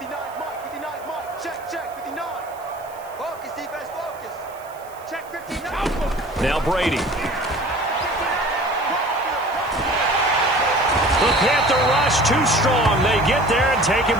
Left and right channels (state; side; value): noise; right; hiss, 24 dB below the sound